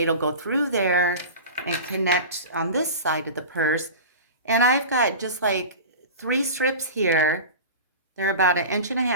will go through there and connect on this side of the purse. And I've got just like 3 strips here. They're about 1.5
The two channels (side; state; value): both; inverted; correlation -0.31